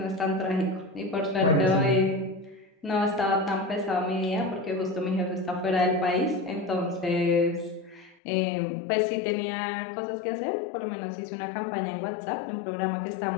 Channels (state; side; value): drops out; right; at 8.2 s